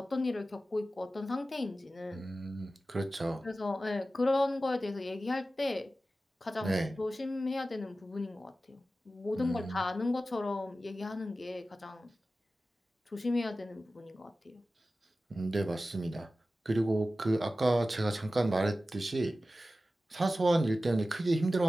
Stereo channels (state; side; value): normal; both; correlation 0.95